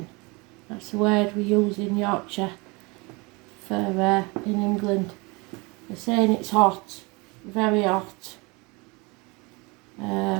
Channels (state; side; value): quieter; left; 26.9 dB